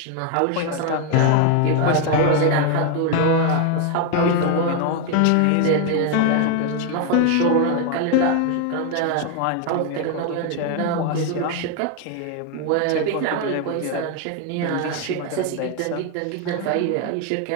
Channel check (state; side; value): different; both; correlation 0.01